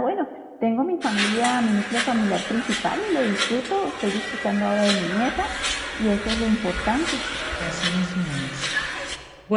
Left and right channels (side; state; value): both; identical; correlation 1.00